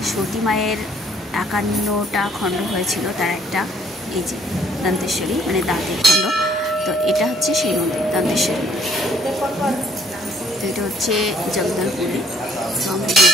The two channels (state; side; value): normal; both; correlation 0.62